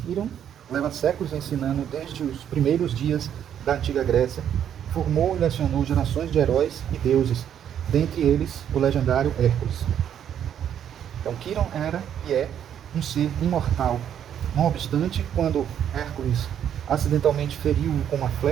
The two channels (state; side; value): quieter; left; 9.5 dB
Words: Quiron leva séculos ensinando desde os primeiros dias da antiga Grécia, formou e lecionou gerações de heróis e deuses, dentre eles o legendário Hércules. Então Quiron era e é um ser imortal. Não obstante, quando Hércules acidentalmente feriu-o com uma